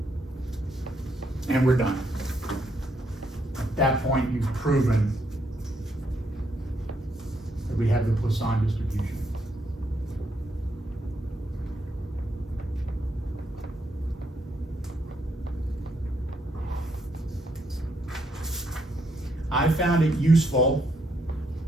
And we're done. At that point, you've proven that we have the Poisson distribution. I found it useful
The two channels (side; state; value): both; normal; correlation 0.75